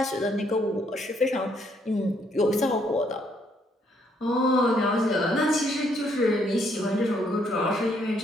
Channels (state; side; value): normal; both; correlation 0.70